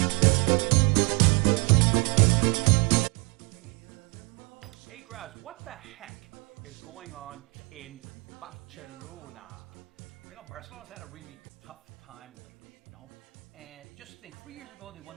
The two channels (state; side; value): quieter; left; 30.7 dB